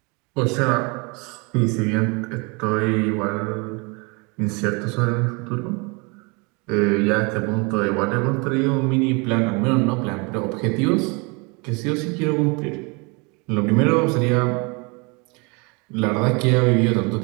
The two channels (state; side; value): quieter; left; 30.0 dB